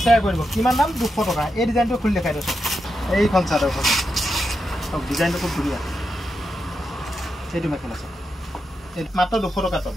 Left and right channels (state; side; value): normal; both; correlation 0.86